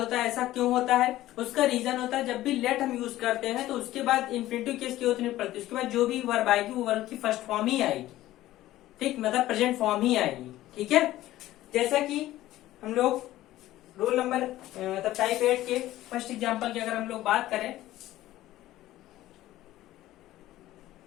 है। ऐसा क्यों होता है? उसका रीजन होता है जब भी लेट हम यूज करते हैं तो उसके बाद इन्फिनेटिव केस की होती नहीं पड़ती, उसके बाद जो भी वर्ब आएगी वो वर्ब की फर्स्ट फॉर्म ही आएगी, ठीक, मतलब प्रेजेंट फॉर्म ही आएगी, ठीक है। जैसा कि हम लोग रूल नंबर मतलब टाइप 8 के फर्स्ट एग्जाम्पल की अगर हम लोग बात करें,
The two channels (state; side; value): quieter; right; 15.2 dB